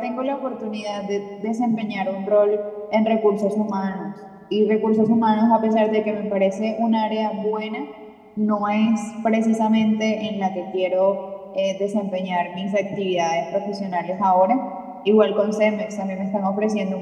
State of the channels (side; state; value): both; identical; correlation 1.00